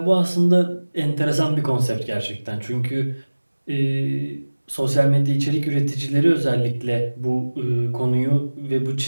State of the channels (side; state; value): both; inverted; correlation -1.00